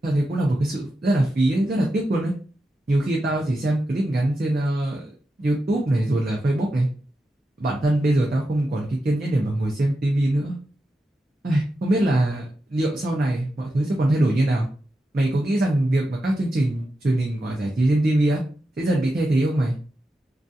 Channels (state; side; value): normal; both; correlation 0.89